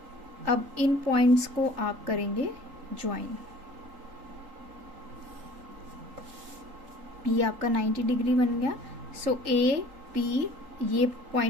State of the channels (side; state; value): left; late; 3.8 ms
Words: अब इन पॉइंट्स को आप करेंगे ज्वाइन। ये आपका 90 डिग्री बन गया। सो AP, ये